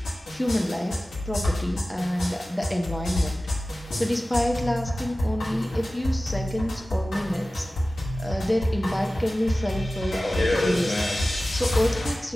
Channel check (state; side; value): normal; both; correlation 0.96